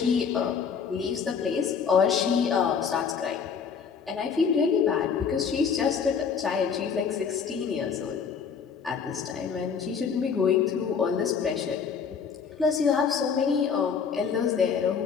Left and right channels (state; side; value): quieter; right; 6.4 dB